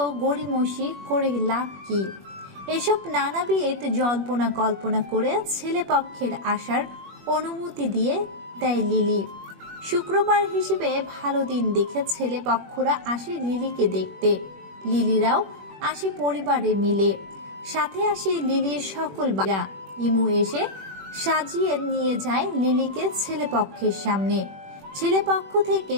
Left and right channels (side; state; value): left; late; 21 ms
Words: গড়িমসি করে লাভ কি? এসব নানাবিধ জল্পনা কল্পনা করে ছেলে পক্ষের আসার অনুমতি দিয়ে দেয় লিলি। শুক্রবার হিসেবে ভালো দিন দেখে ছেলে পক্ষরা আসে লিলিকে দেখতে। লিলিরাও আসে পরিবারে মিলে, সাথে আসে লিলির সকল বাড়া। ইমু এসে সাজিয়ে নিয়ে যায় লিলিকে ছেলে পক্ষের সামনে। ছেলে পক্ষ থেকে